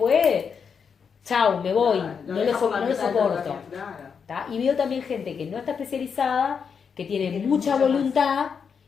chau, me voy, no lo soporto. ¿Tá? Y veo también gente que no está especializada, que tiene mucha voluntad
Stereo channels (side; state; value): right; quieter; 6.4 dB